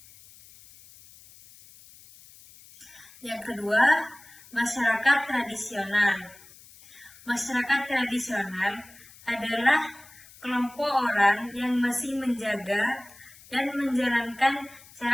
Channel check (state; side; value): noise; left; hiss, 22 dB below the sound